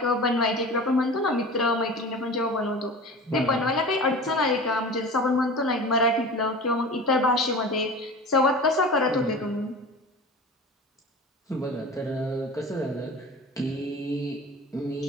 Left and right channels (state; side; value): normal; both; correlation 0.35